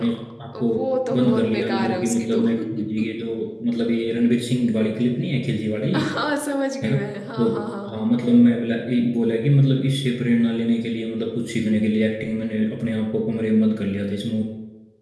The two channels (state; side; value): identical; both; correlation 1.00